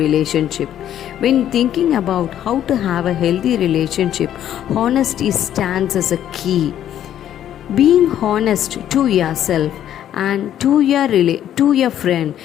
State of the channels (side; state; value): right; quieter; 11.0 dB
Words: When thinking about how to have a healthy relationship, honesty stands as a key. Being honest to yourself and to your friend,